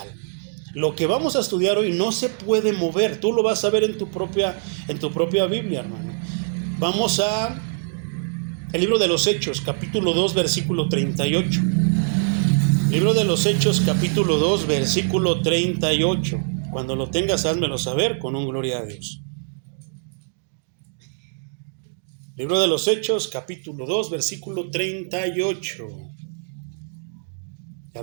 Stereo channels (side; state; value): left; silent; digital silence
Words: Lo que vamos a estudiar hoy no se puede mover. Tú lo vas a ver en tu propia Biblia, hermano. Vamos a el libro de los Hechos, capítulo 2, versículo 38. Libro de los Hechos, capítulo 2, versículo 38. Cuando lo tengas, házmelo saber con un gloria a Dios. Libro de los Hechos, capítulo 2, versículo 38. ¿Ya